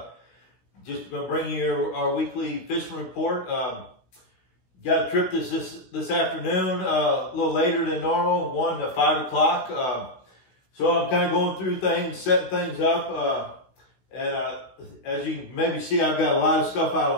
Just going to bring you our weekly fishing report. Got a trip this afternoon, a little later than normal, 1 to 5 o'clock. So I'm kind of going through things, setting things up. As you can maybe see, I've got a lot of stuff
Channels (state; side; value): late; right; 16 ms